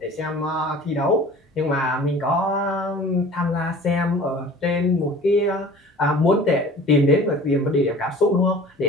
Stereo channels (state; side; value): normal; both; correlation 0.44